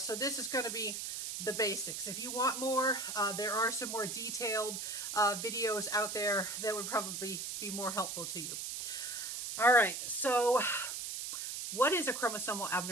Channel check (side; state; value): right; noise; hiss, 5 dB below the sound